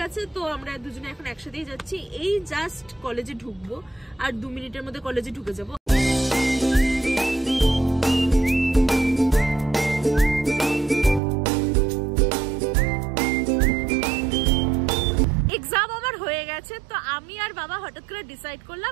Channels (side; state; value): left; drops out; at 11.2 s